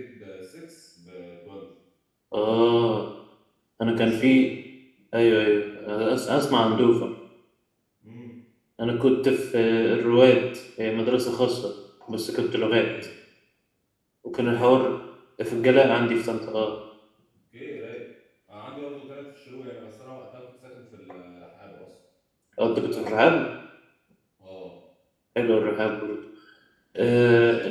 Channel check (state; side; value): identical; both; correlation 1.00